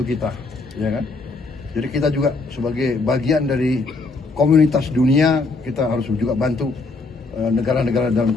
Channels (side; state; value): right; quieter; 3.7 dB